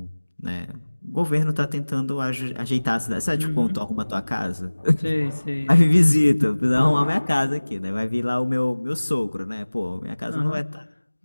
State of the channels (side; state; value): both; inverted; correlation -1.00